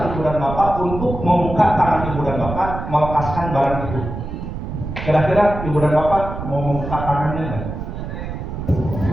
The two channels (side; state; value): right; noise; rumble, 7 dB below the sound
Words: ibu dan bapak untuk membuka tangan ibu dan bapak melepaskan barang itu. Kira-kira ibu dan bapak mau membuka tangannya nggak?